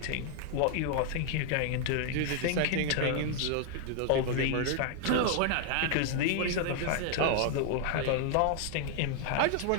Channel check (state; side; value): different; both; correlation 0.00